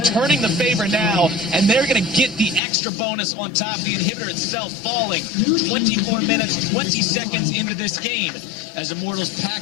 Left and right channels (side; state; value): right; drops out; at 2.6 s